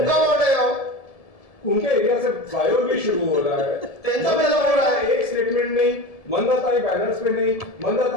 वोट है वो। उनके एरिया से फ्लाईओवर भी शुरू हो रहा है। टेंशन में लग रहा है। एक स्टेटमेंट नहीं, मंदाताई बैनर्स में नहीं,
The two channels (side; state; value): right; late; 1.7 ms